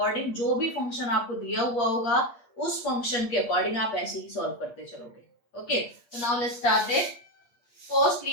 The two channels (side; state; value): right; late; 8.5 ms